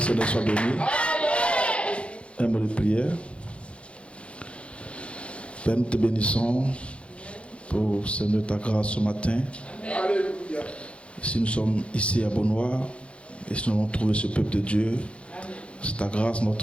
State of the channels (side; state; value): right; late; 0.060 ms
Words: Seigneur soit béni. Un mot de prière. Père, nous te bénissons pour Seigneur ta grâce ce matin. Alléluia. Si nous sommes ici à Beaunois et si nous avons trouvé ce peuple de Dieu, c'est ta grâce,